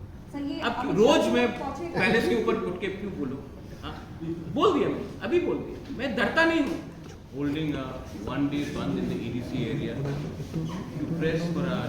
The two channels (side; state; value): both; identical; correlation 1.00